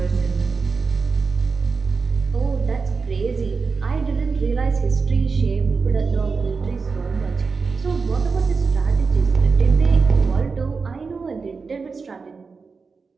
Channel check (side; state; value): left; quieter; 4.8 dB